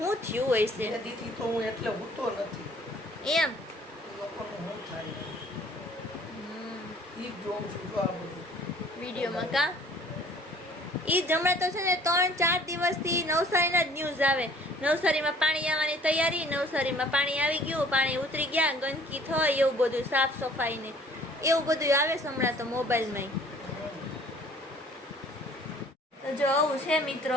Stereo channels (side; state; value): both; normal; correlation 0.54